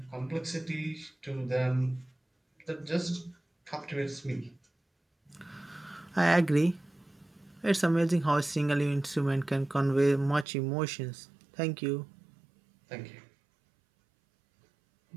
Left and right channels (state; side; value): drops out; left; at 10.5 s